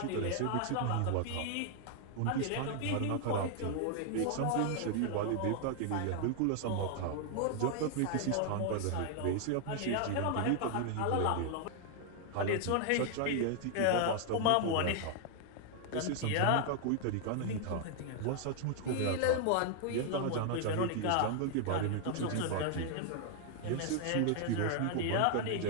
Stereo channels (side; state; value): both; different; correlation 0.00